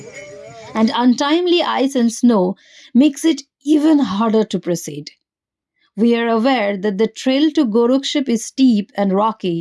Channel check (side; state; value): both; identical; correlation 1.00